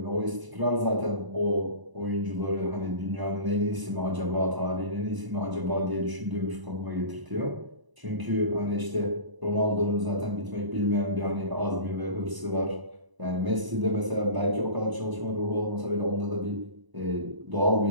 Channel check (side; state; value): left; late; 1.0 ms